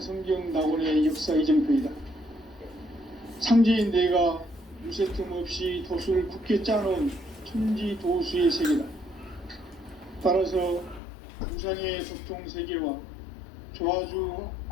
낙원의 역사 이정표이다. 상제인 내가 유세틈 없이 도수를 굳게 짜놓은 천지 도수의 세계다. 따라서 우상의 도통 세계와 조화주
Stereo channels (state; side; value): drops out; right; at 11.0 s